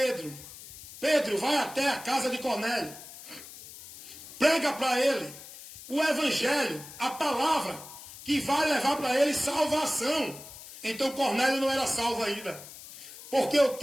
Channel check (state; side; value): noise; left; hiss, 15 dB below the sound